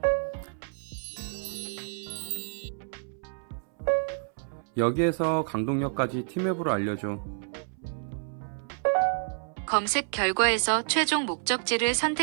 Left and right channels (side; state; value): left; silent; 58 dB below the other